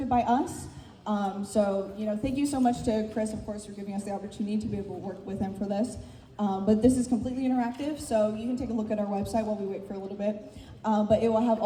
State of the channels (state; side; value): identical; both; correlation 1.00